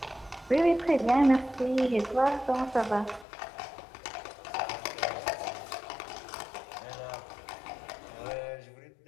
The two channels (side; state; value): right; drops out; at 3.2 s